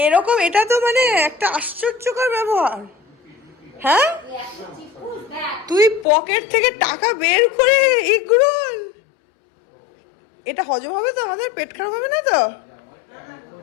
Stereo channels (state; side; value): drops out; right; at 6.1 s